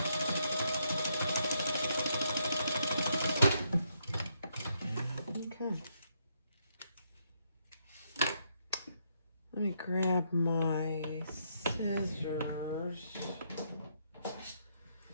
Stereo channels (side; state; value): both; inverted; correlation -0.75